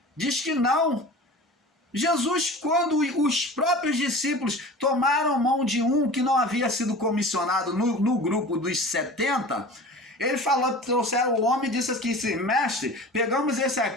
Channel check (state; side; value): normal; both; correlation 0.38